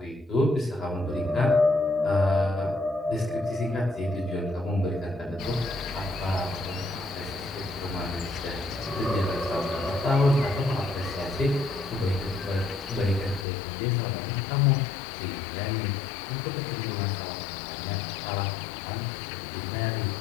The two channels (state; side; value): drops out; right; at 13.5 s